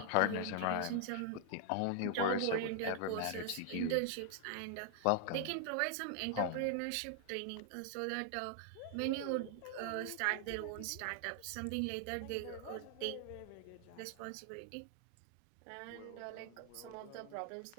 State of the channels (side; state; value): both; different; correlation 0.00